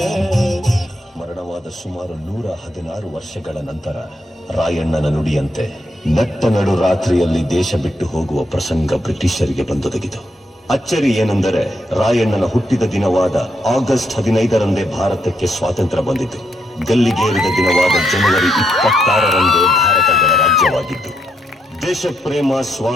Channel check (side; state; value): both; normal; correlation 0.78